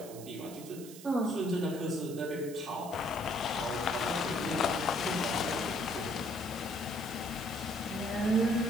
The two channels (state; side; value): noise; right; hiss, 15 dB below the sound